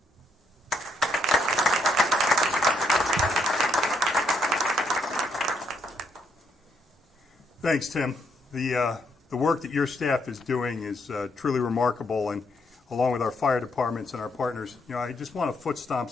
Thanks, Tim. The work that your staff is doing is truly remarkable, and along with our fire departments and our partners, I just want to foot stomp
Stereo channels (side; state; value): both; normal; correlation 0.74